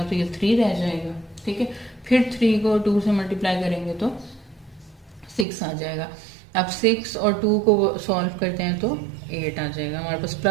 तो ये 3 रह जाएगा, ठीक है। फिर 3 को 2 से मल्टीप्लाई करेंगे तो 6 आ जाएगा। अब 6 और 2 को सॉल्व करते हैं तो 8 आ जाएगा। हमारे पास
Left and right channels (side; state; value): left; drops out; at 5.5 s